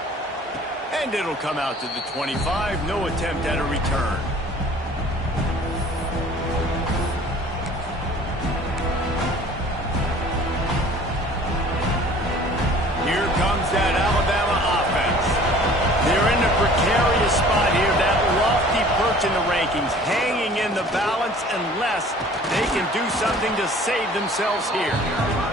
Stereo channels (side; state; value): both; normal; correlation 0.49